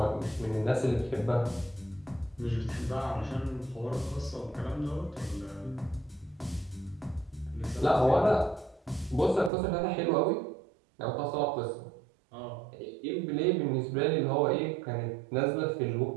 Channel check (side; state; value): left; drops out; at 9.5 s